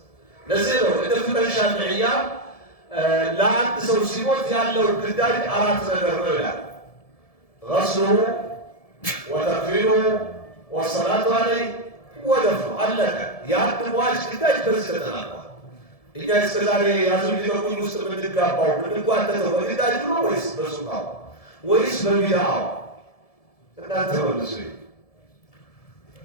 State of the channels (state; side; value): late; right; 1.7 ms